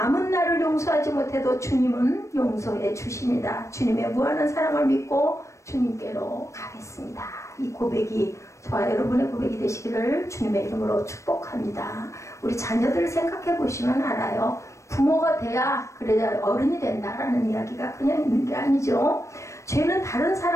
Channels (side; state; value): right; late; 0.15 ms